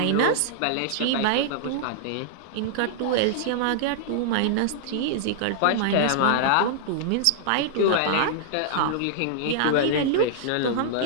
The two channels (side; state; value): both; different; correlation -0.01